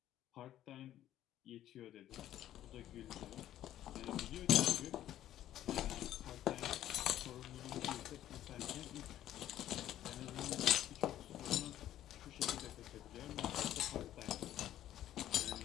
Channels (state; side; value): quieter; right; 12.5 dB